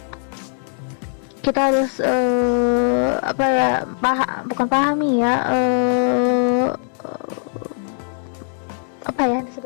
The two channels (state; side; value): silent; right; digital silence